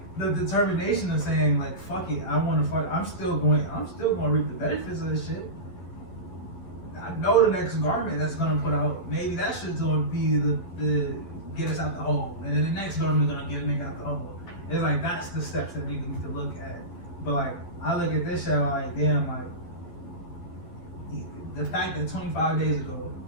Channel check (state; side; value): late; right; 11 ms